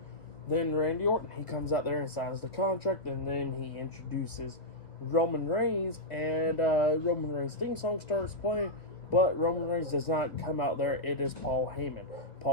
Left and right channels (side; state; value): right; late; 1.6 ms